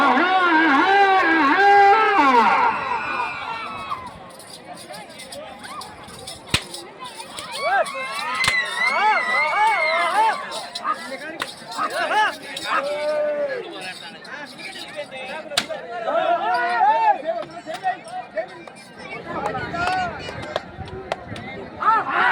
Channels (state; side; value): identical; both; correlation 1.00